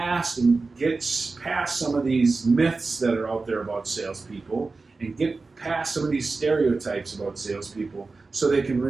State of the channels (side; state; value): left; quieter; 3.9 dB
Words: some of these myths that are out there about salespeople, and get past some of these stereotypes about salespeople so they can